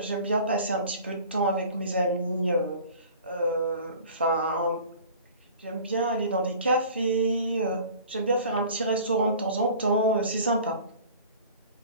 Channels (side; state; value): both; inverted; correlation -0.44